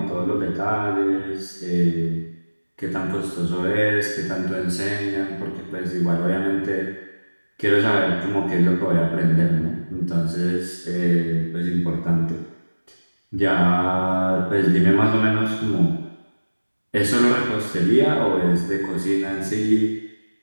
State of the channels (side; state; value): both; inverted; correlation -1.00